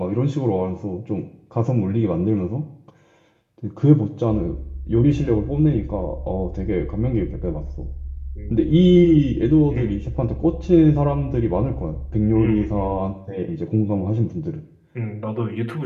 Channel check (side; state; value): both; identical; correlation 1.00